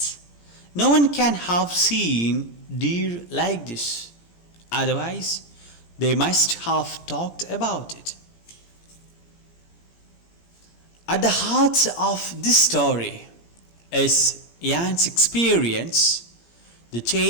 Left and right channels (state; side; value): late; right; 17 ms